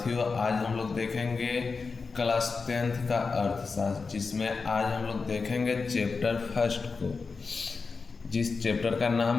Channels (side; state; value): right; quieter; 4.6 dB